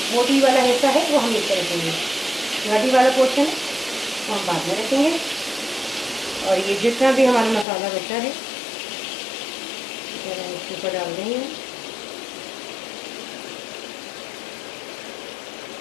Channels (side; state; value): right; drops out; at 7.7 s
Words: मोटी वाला हिस्सा है वो हम नीचे रखेंगे, हड्डी वाला पोर्शन है वो हम बाद में रखेंगे। और ये जितना भी हमारा मसाला बचा है इसके ऊपर डाल देंगे।